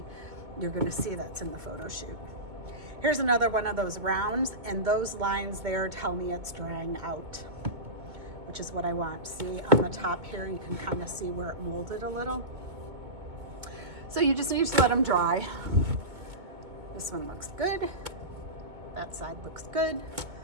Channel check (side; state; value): left; late; 2.2 ms